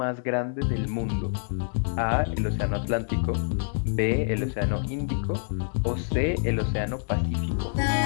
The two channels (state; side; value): silent; right; digital silence